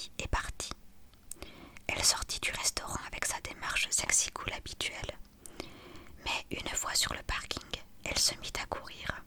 et partit. Elle sortit du restaurant avec sa démarche sexy cool habituelle. Mais une fois sur le parking, elle se mit à courir.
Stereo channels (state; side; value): identical; both; correlation 1.00